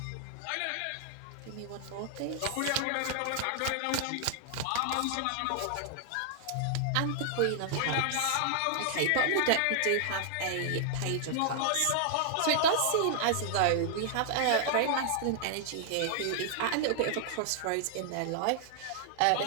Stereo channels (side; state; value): both; different; correlation -0.01